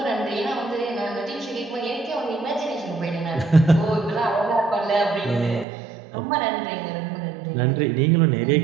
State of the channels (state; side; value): drops out; left; at 5.7 s